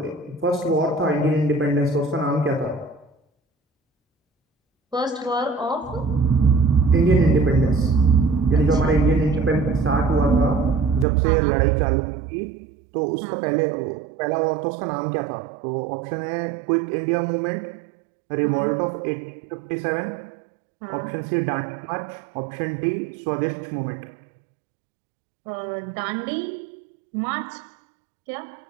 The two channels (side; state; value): left; drops out; at 11.1 s